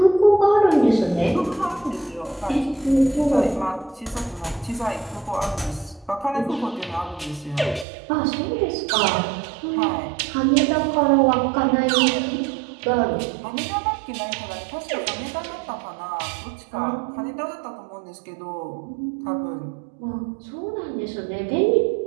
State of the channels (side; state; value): left; drops out; at 7.9 s